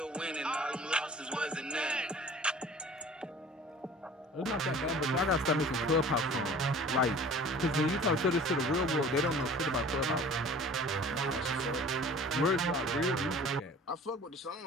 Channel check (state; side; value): normal; both; correlation 0.46